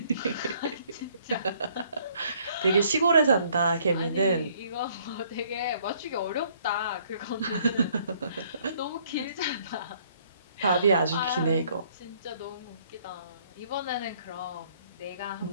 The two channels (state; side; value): inverted; both; correlation -0.63